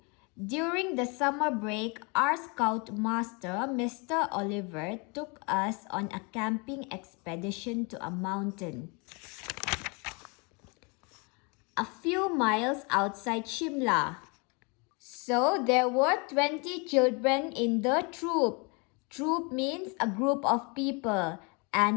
During the summer break, our scout master, Mr. Oliver, took us on a camping expedition to a mountain a few miles outside Shimla. So there were 20 children in the troop. Troop means a group of people.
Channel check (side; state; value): right; quieter; 31.6 dB